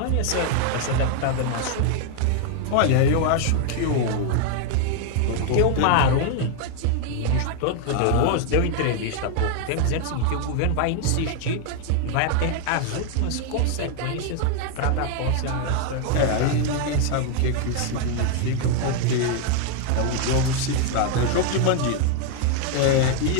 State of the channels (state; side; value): different; both; correlation 0.01